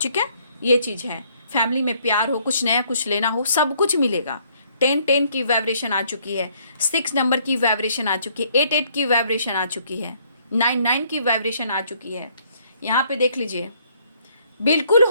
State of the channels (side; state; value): both; inverted; correlation -0.65